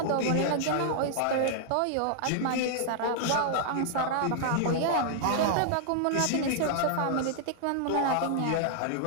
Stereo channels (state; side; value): different; both; correlation -0.01